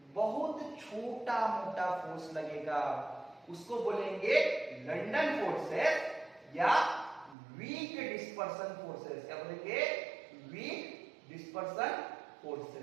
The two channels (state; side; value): drops out; left; at 7.4 s